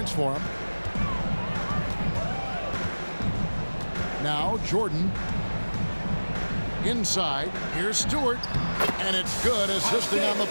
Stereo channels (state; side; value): inverted; both; correlation -1.00